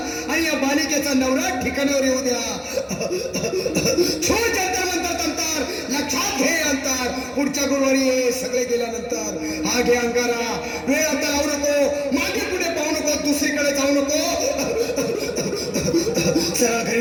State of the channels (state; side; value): identical; both; correlation 1.00